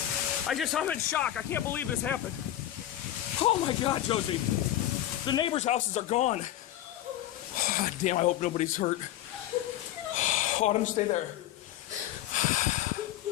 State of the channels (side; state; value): right; quieter; 13.2 dB